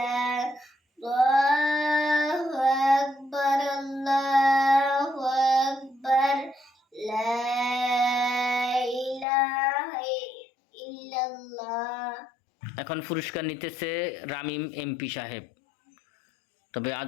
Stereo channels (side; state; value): right; drops out; at 9.2 s